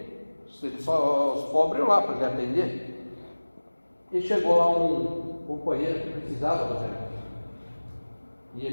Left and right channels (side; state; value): both; inverted; correlation -1.00